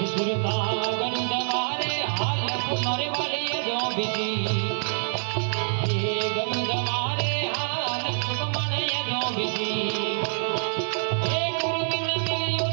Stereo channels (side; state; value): left; silent; digital silence